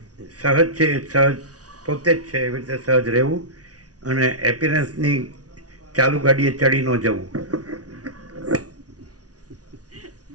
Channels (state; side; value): late; left; 0.68 ms